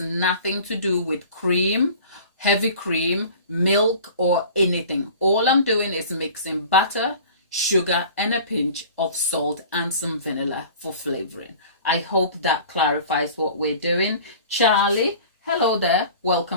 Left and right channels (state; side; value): inverted; both; correlation -0.43